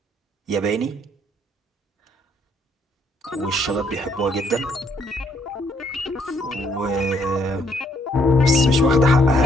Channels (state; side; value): normal; both; correlation 0.70